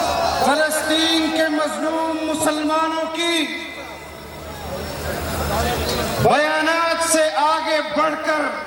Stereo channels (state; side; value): identical; both; correlation 1.00